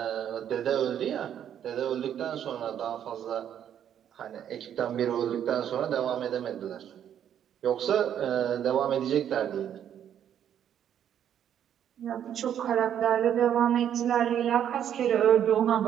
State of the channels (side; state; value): left; quieter; 9.7 dB